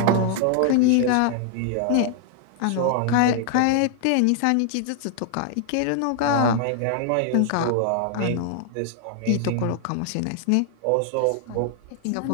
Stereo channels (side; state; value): both; different; correlation 0.00